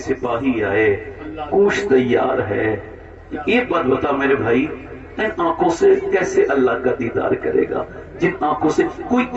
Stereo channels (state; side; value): identical; both; correlation 1.00